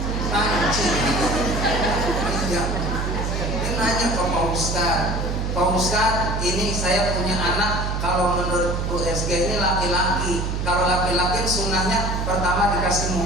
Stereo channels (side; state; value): right; noise; hum, 1 dB below the sound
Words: Panci. Iya. Dia nanya ke Pak Ustadz, Pak Ustadz, ini saya punya anak, kalau menurut USG ini laki-laki. Kalau laki-laki sunnahnya pertama dikasih